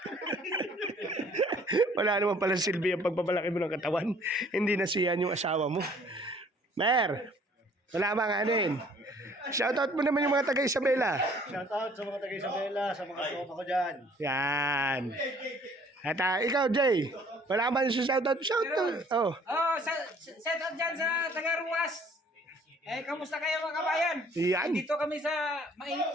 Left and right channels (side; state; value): both; normal; correlation 0.57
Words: Wala naman pala silbi ang pagpapalaki mo ng katawan. Hindi na siyan yung asawa mo. Mer, wala bang ano yun? Shoutout mo naman yung mga taga Isabela. Shoutout sa mga taga-Isabela, sa mga tropa ko dyan. Yan. At ikaw, Jay, wala ba yung shoutout? Shoutout. Oh. Oh, set up dyan sa Tagaruas. Kamusta kayo mga kabayan? Yan. Dito kami sa mainit